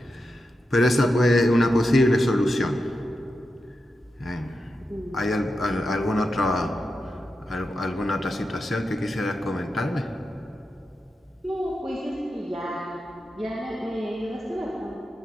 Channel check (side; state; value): both; normal; correlation 0.89